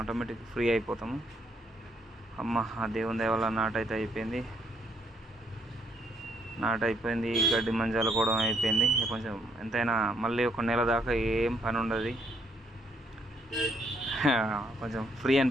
ఆటోమేటిక్ ఫ్రీ అయిపోతాము. ఆ దేవుని దయ వల్ల నాటు అయితే అయిపోయింది. గడ్డి మంజాలు కూడా అయిపోయింది. కొంచెం ఎంతైనా మళ్ళీ ఒక నెల దాకా ఏం పని ఉండదు. కొంచెం ఫ్రీ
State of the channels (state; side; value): normal; both; correlation 0.72